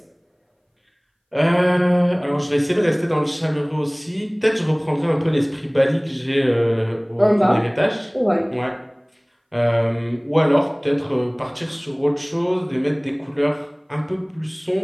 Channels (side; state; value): both; identical; correlation 1.00